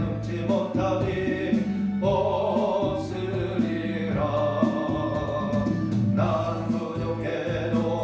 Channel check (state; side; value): identical; both; correlation 1.00